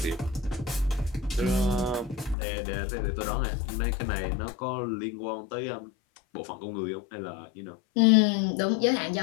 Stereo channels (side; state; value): right; drops out; at 2.4 s